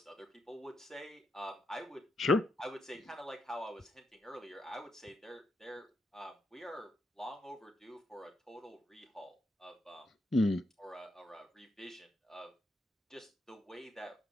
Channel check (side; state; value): both; normal; correlation 0.81